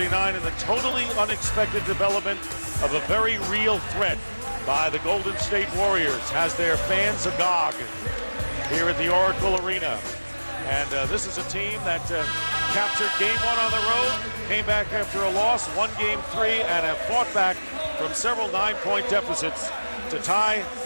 in the totally unexpected development of a very real threat by the Golden State Warriors has their fans agog here at the Oracle Arena. And this is a team that captured game 1 on the road, came back after a loss, won game 3, and have fought back from several 9-point deficits to tie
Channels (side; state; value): both; inverted; correlation -1.00